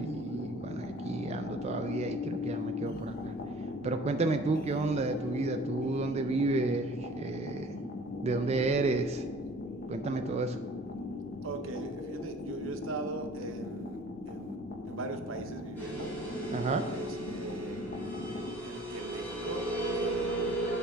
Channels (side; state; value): both; normal; correlation 0.49